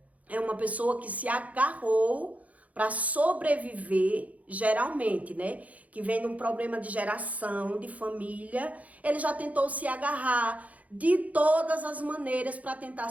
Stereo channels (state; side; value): late; left; 0.070 ms